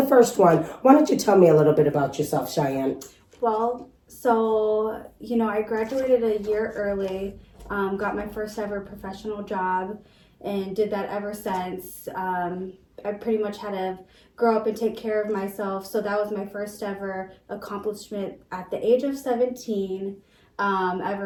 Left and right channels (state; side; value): identical; both; correlation 1.00